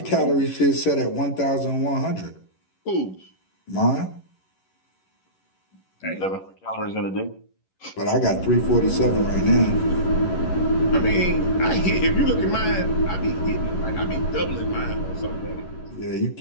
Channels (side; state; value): right; late; 11 ms